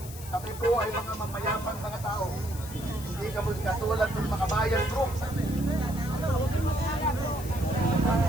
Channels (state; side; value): noise; left; hiss, 14 dB below the sound